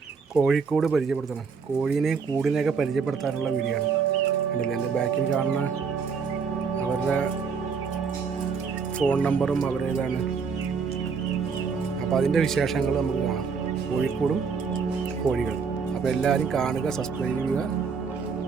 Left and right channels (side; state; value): left; quieter; 5.6 dB